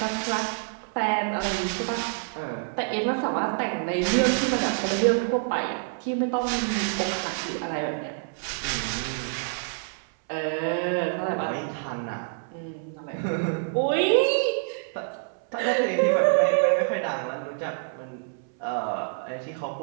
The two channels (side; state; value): left; silent; 60 dB below the other